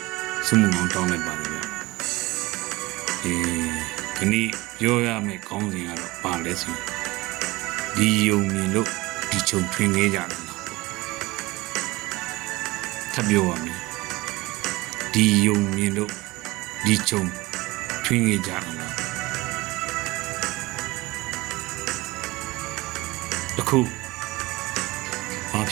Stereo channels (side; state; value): left; quieter; 21.1 dB